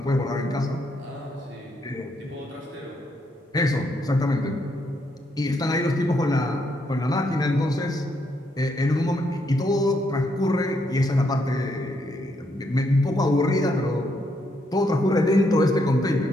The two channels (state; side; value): normal; both; correlation 0.76